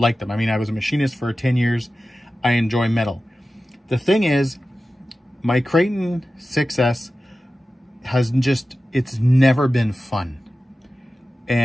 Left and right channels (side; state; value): both; normal; correlation 0.94